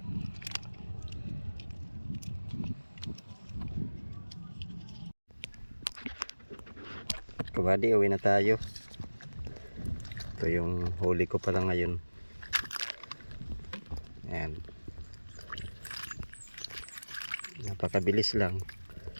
Kabady, uwi na tayo. Ito yung huli ko pala ngayon. Ayan. Napakabilis lang.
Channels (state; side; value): inverted; both; correlation -1.00